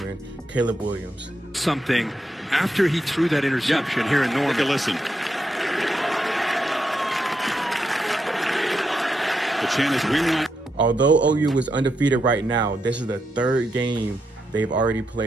Caleb Williams. Something after he threw that interception here in Norman. Take a listen. The chant is "We want." Although OU is undefeated right now, this is the 3rd game they've already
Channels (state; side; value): normal; both; correlation 0.83